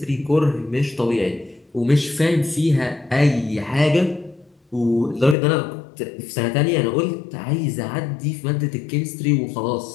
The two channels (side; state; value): right; drops out; at 5.4 s